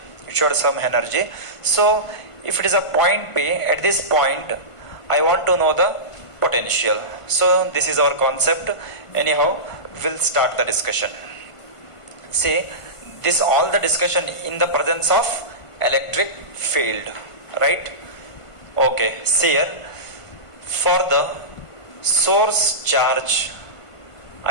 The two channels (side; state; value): right; late; 1.5 ms